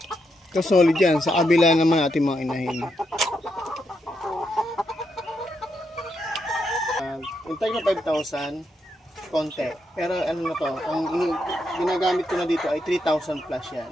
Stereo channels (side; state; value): both; normal; correlation 0.81